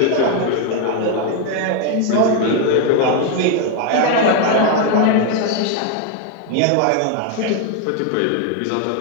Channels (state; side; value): different; both; correlation 0.01